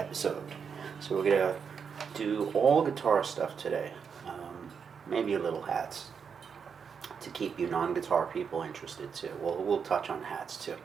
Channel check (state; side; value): quieter; left; 6.5 dB